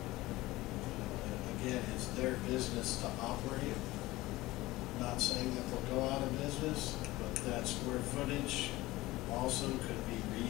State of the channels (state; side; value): quieter; right; 18.7 dB